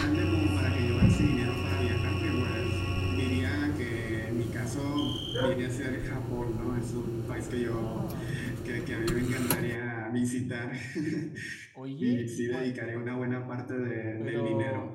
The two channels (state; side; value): identical; both; correlation 1.00